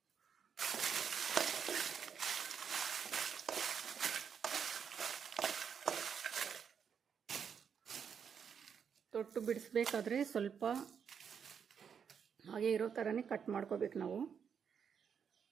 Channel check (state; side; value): quieter; left; 7.2 dB